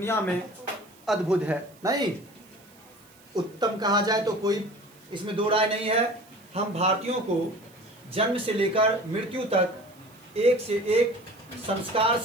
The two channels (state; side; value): noise; right; hiss, 27 dB below the sound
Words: में अद्भुत है, नहीं उत्तम कहा जाए तो कोई इसमें दो राय नहीं है। हम भारतीयों को जन्म से लेकर मृत्यु तक एक से एक संस्कार